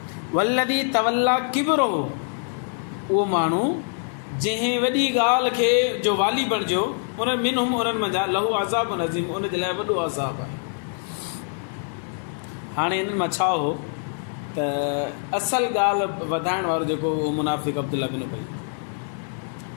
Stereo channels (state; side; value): silent; right; 62 dB below the other